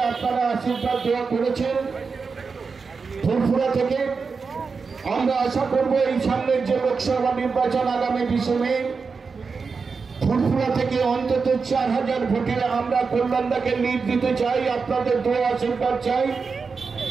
আপনারা আশীর্বাদ দেওয়া করেছেন ফুরফুরা থেকে। আমরা আশা করব এই সামনের যে লোকসভা নির্বাচন আগামী 20 মে ফুরফুরা থেকে অন্তত 4000 ভোটে আমরা কল্যাণদাকে লিড দিতে চাই। আপনাদের দোয়া আশীর্বাদ চাই।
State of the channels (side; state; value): left; quieter; 5.0 dB